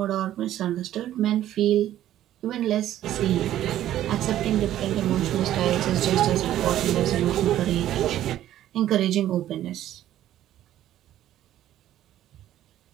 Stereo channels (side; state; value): left; quieter; 12.6 dB